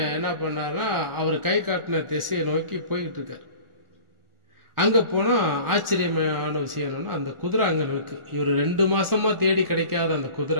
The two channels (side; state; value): left; late; 1.4 ms